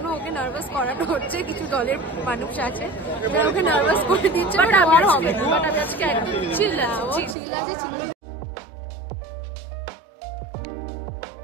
ওকে নার্ভাস করানো হচ্ছে, কিছু দলের মানুষ আছে যারা ওকে নার্ভাস করে দিচ্ছে, বাট আমার হবে না। বাট আমি আজকে একদম চিল আছে।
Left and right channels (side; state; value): left; drops out; at 7.4 s